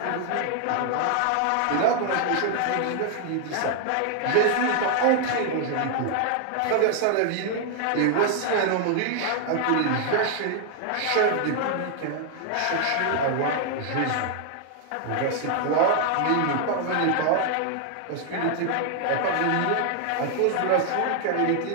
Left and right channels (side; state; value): both; different; correlation 0.00